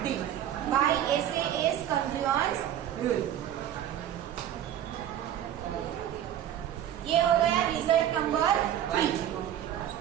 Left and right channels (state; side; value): quieter; left; 10.9 dB